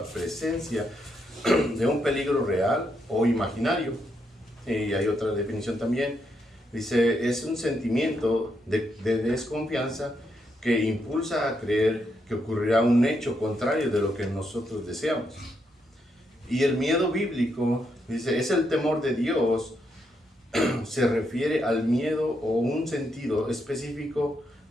presencia de un peligro real o imaginario. Y hay otra definición también. Dice, es un sentimiento de desconfianza que impulsa a creer que ocurrirá un hecho contrario de lo que nosotros deseamos. Y el miedo bíblico, dice, es el temor de Dios. Se refiere al miedo o un sentido específico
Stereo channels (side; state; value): both; normal; correlation 0.79